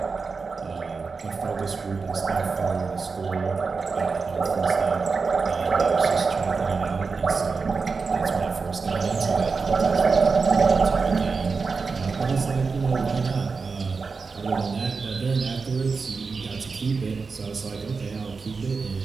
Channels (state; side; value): quieter; left; 4.7 dB